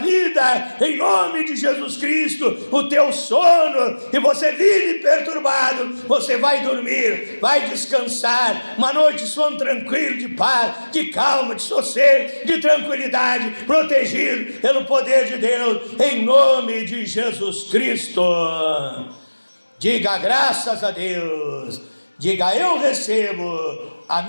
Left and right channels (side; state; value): both; inverted; correlation -1.00